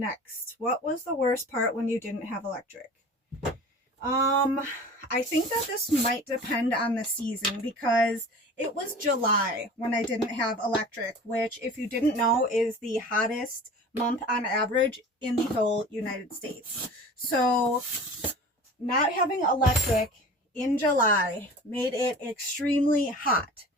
what was the worst part when you didn't have electric? I think that this might depend on the season because it was July when I didn't have electric, which if you didn't know is the hottest month on average in the whole United States. So not having electric in July made it extremely hot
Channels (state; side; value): normal; both; correlation 0.39